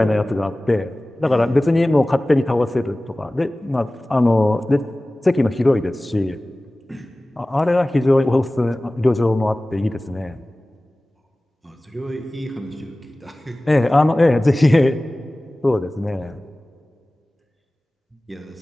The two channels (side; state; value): both; normal; correlation 0.98